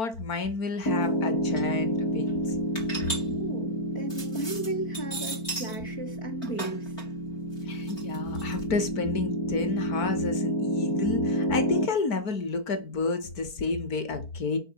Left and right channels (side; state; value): right; late; 4.5 ms